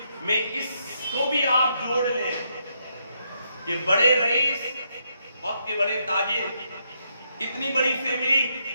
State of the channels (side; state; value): both; inverted; correlation -0.78